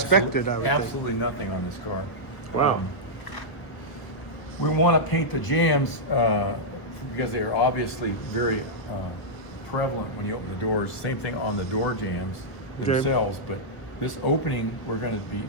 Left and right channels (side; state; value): right; late; 1.0 ms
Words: expected, I would think. absolutely nothing on this car. Wow. We want to paint the jams because they are obviously very prevalent when you open the doors. Same thing on the door jams themselves, but this opening we're going to be